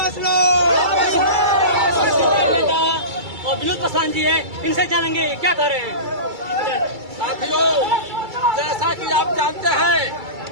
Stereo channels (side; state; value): left; late; 2.3 ms